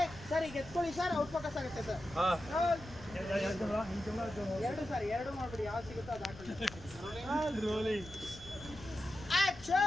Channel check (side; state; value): left; noise; rumble, 17 dB below the sound